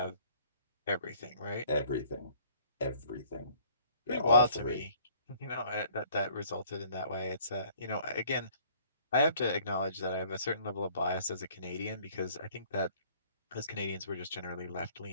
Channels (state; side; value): inverted; both; correlation -0.57